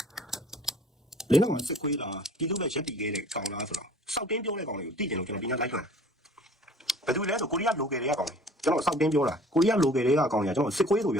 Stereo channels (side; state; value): both; normal; correlation 0.49